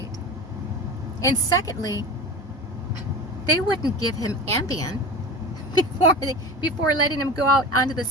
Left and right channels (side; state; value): both; normal; correlation 0.31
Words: And secondly, they wouldn't give him Ambien before letting him go out onto the